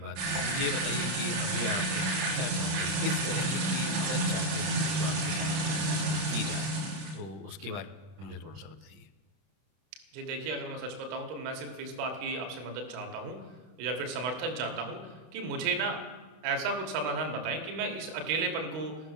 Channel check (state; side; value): late; left; 32 ms